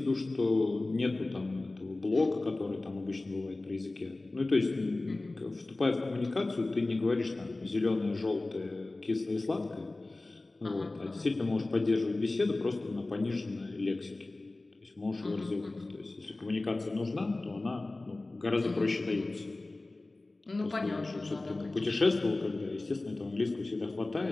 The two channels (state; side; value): quieter; right; 3.0 dB